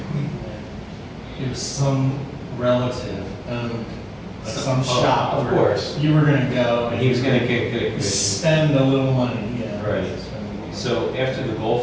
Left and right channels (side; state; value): both; identical; correlation 1.00